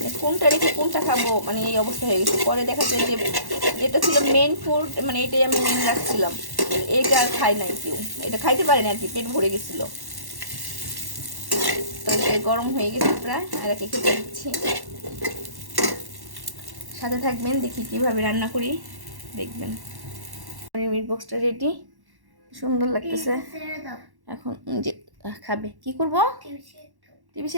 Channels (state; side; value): late; left; 1.1 ms